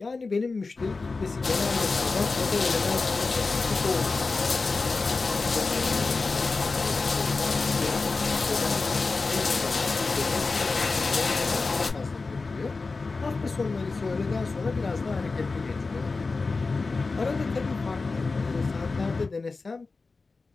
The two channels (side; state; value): right; quieter; 3.9 dB